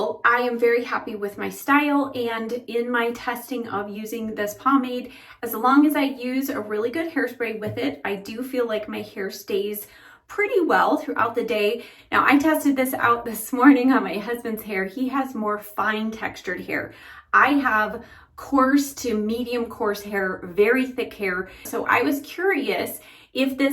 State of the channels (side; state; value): both; identical; correlation 1.00